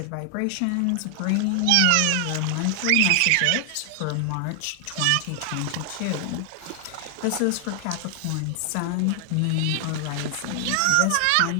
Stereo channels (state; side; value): different; both; correlation 0.00